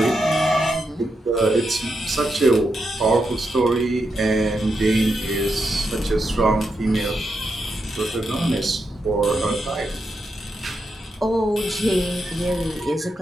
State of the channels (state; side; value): normal; both; correlation 0.85